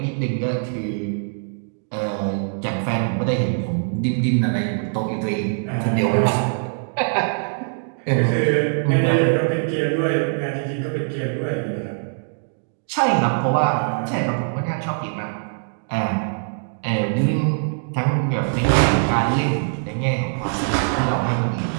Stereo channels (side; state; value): left; silent; digital silence